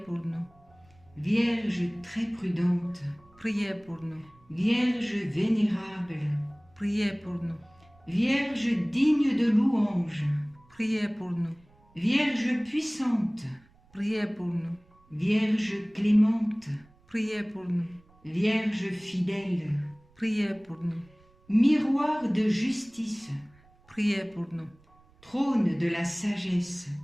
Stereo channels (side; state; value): right; noise; rumble, 30 dB below the sound